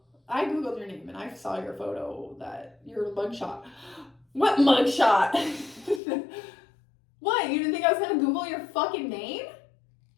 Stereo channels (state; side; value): drops out; right; at 6.0 s